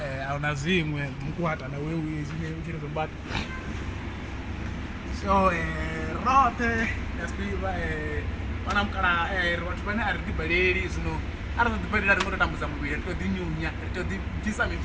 ahuna zwiṅwe mukwata na wewe zwine u tshi ri zombata so rote yasiva vana mukala vhathu vane a ri ḓibaleli zwino a ri ḓo ḓibalela ri ngo to tambudza muvhili ri to ḓinyunya ri to ḓibvisa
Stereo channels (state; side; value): identical; both; correlation 1.00